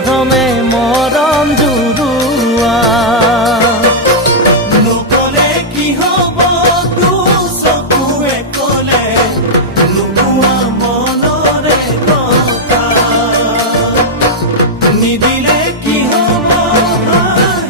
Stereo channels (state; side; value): normal; both; correlation -0.06